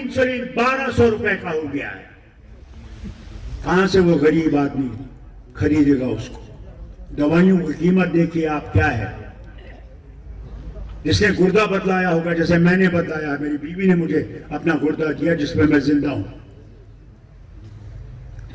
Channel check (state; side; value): identical; both; correlation 1.00